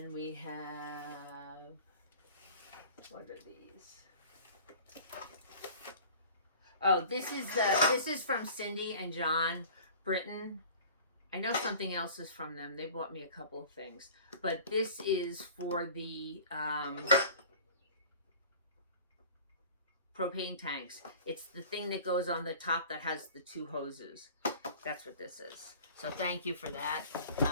we have, what are these? Oh, this is from Cindy and John Britton. I know something else is from them. They bought me a couple of things, but this is for the propane tanks. It's the thing that goes on the top that has the two hoses. That's what this is. So thank you for that.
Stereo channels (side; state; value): both; inverted; correlation -0.44